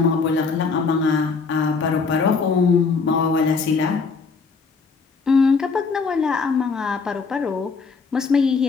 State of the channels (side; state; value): right; quieter; 4.8 dB